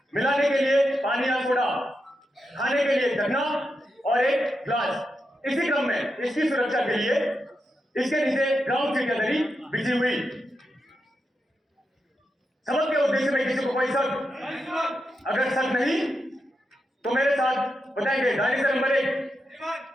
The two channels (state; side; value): normal; both; correlation 0.86